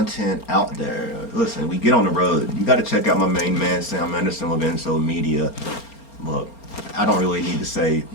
out there, listen, we get on the road. You got to check out my main man, Sam Anderson with Enso Media. Look, I don't really need to say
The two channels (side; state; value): right; late; 4.3 ms